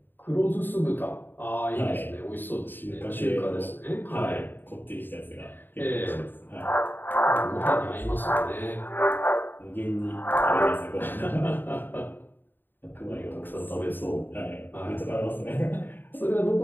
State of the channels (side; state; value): right; late; 0.093 ms